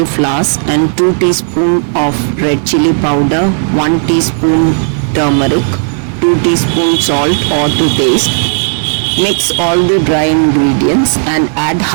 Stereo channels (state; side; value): silent; left; digital silence